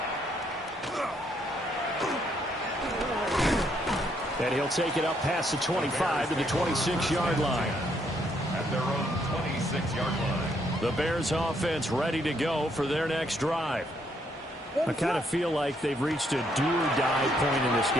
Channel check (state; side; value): normal; both; correlation 0.72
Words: And he'll take it up past the 25 to the 26-yard line. At their own 26-yard line. The Bears offense ready to go for their next drive. I kind of feel like they've reached a do-or-die point in this